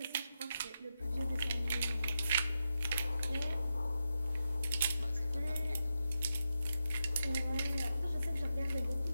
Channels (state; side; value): inverted; both; correlation -0.87